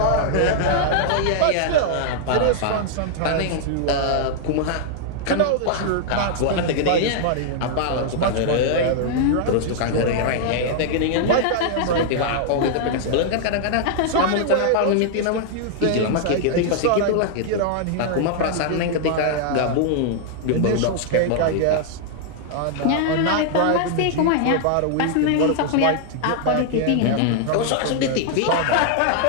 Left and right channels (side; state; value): both; different; correlation -0.01